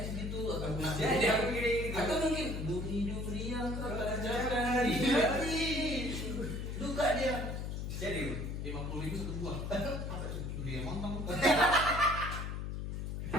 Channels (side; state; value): left; noise; hum, 4 dB below the sound